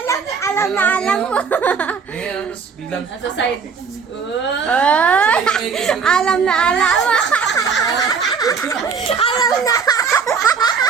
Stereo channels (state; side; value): quieter; left; 5.8 dB